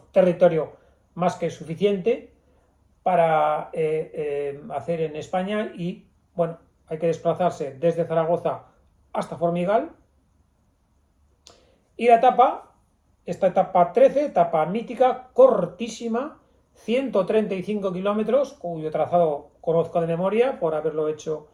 territorio más que suficiente para hacer en España y, bueno, hay que desplazarse desde Zaragoza hasta Formigal. Y esta etapa 13, etapa mítica, cortísima, 135 kilómetros, cuyo trazado conozco de memoria por haberlo hecho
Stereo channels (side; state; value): both; identical; correlation 1.00